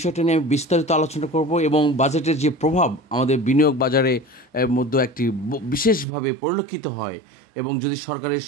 নিয়ে আমি বিস্তারিত আলোচনা করব এবং বাজেটের যে প্রভাব আমাদের বিনিয়োগ বাজারে মধ্যে একটি বিশেষভাবে পরিলক্ষিত হয় এবং যদি সরকারের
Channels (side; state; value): left; drops out; at 6.1 s